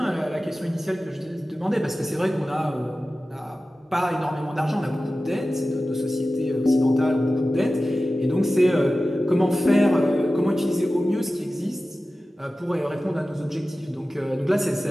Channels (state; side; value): normal; both; correlation 0.95